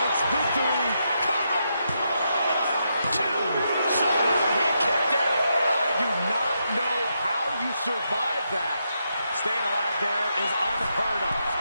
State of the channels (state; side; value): inverted; both; correlation -0.82